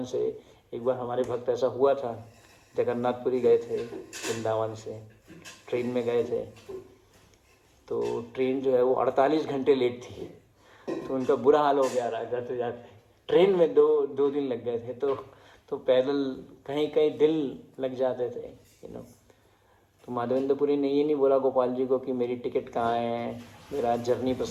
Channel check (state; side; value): identical; both; correlation 1.00